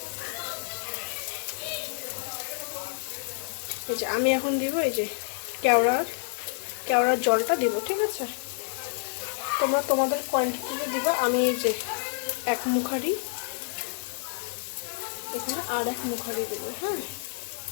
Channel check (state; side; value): silent; right; digital silence